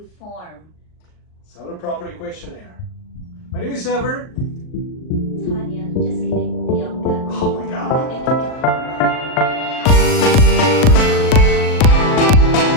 form. Seller Property Questionnaire. My name is Ever. Tanya, just kidding, Bianca. Oh my god.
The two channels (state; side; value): late; right; 38 ms